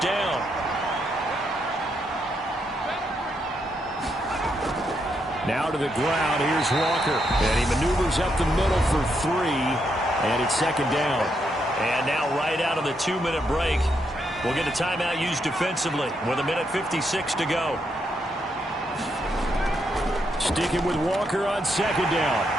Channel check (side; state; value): both; normal; correlation 0.79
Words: Now to the ground, here's Walker. And he maneuvers up the middle for 3, and it's 2nd down. And now right out of the 2-minute break, we'll get a timeout used defensively with 1:56 to go. Sticking with Walker on 2nd down.